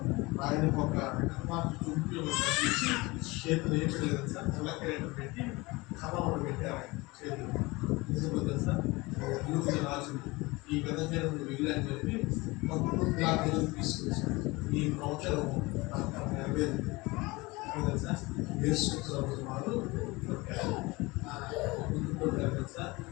ఆయన ఒక చుట్టూ తీసి చేతులు ఏం లేదు సార్, తెల్లకేట పెట్టి కర్ర ఒకటి పెట్టారు చేతులు. నిజంగా తెలుసా? రాజు ఈ విధంగా వెళ్ళి అని చెప్పి పంపులా తీసుకొచ్చారు. ఈ ప్రవచనము నెరవేరింది. తెలుసా? యేసు ప్రభు వారు పెట్టారు. తెలుసా?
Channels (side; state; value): right; quieter; 23.2 dB